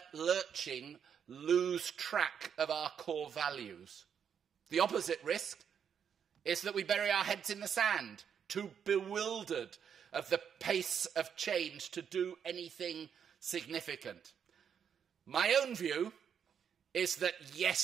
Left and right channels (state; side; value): quieter; left; 7.8 dB